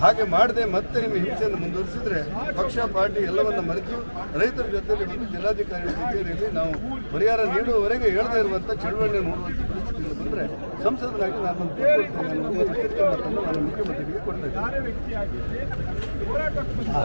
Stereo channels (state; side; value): inverted; both; correlation -1.00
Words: ಹಾಗೆ ಮಾಡದೆ ಮತ್ತೆ ನಿಮ್ಮ ಹಿಂಸೆಯನ್ನು ಮುಂದುವರಿಸಿದ್ರೆ ಪಕ್ಷ ಪಾರ್ಟಿ ಎಲ್ಲವನ್ನ ಮರೆತು ರೈತರ ಜೊತೆಯಲ್ಲಿ ಒಂದು ಜಿಲ್ಲಾಧಿಕಾರಿಗಳ ಕಚೇರಿಯಲ್ಲಿ ನಾವು ಪರಿಹಾರ ನೀಡುವವರೆಗೆ ಹೇಳದೇ ಇರುವಂಥ ಚಳವಳಿ ನೋಡುವಂಥ ಪರಿಸ್ಥಿತಿಯಲ್ಲಿ ಬಂದರೆ ಸಂಸದರಾಗಿ ನಾನು ಎಚ್ಚರಿಕೆ ಮಾತನ್ನು ನಾನು ಮುಖ್ಯಮಂತ್ರಿಗೆ ಕೊಡ್ತಾ